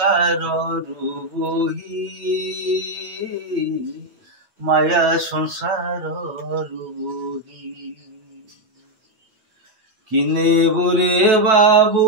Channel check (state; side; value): late; left; 9.2 ms